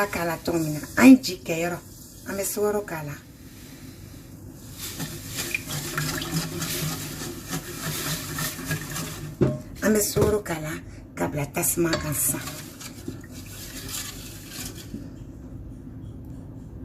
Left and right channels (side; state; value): both; identical; correlation 1.00